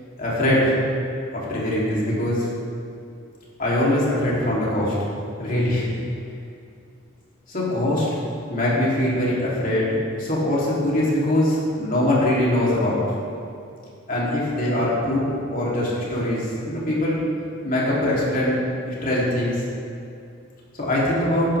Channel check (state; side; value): normal; both; correlation 0.43